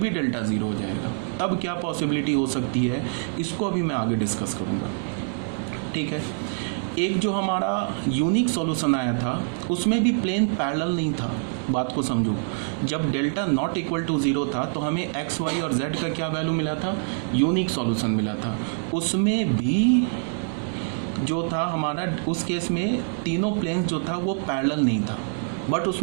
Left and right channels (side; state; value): left; silent; 62 dB below the other